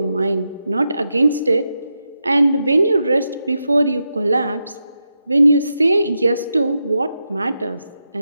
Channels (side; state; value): both; inverted; correlation -0.87